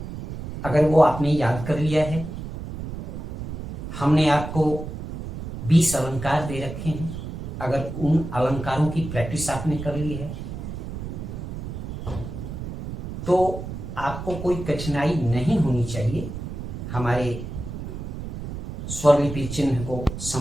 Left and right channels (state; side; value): noise; right; rumble, 8 dB below the sound